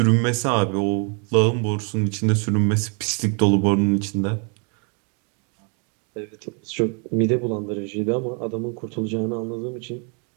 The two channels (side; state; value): left; quieter; 38.0 dB